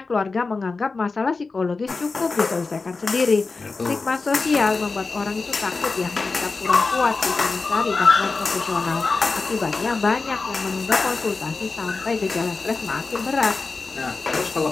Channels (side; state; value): right; quieter; 4.0 dB